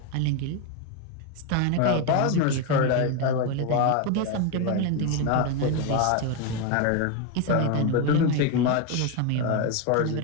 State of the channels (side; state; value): both; different; correlation 0.02